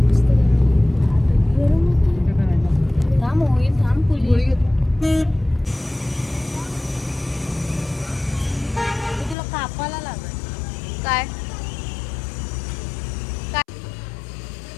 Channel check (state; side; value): drops out; right; at 9.3 s